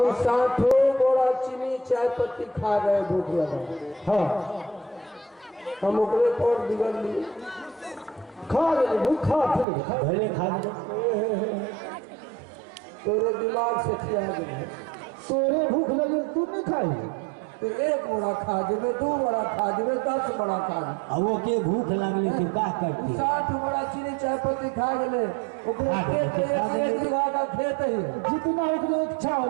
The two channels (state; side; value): drops out; left; at 9.7 s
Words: 60 बड़ा चीनी चाय पत्ती खा रहे भूख लगा। हाँ, हम ओकरे पर बिगड़ लिए। खा ले, भूखा फिर खा, पहले खा ले। तोरे दिमाग से खिया गए। तोरे भूख लगे तू नहीं खाई? तो 1 बड़ा खा जेबे, 2 बड़ा खा जेबे, 10 बड़ा खा जेबे। वो के भूख लगले के का करती? 60 बड़ा चीनी चाय पत्ती खा गए। ओकरे खा गए, खेत खा गए। 1 बीघा का खेत है। जितना उतना इच्छा